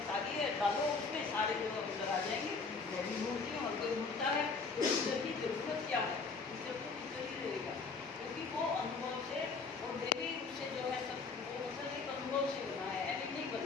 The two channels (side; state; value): right; quieter; 4.6 dB